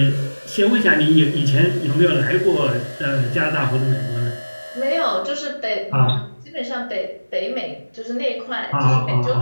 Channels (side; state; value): both; inverted; correlation -1.00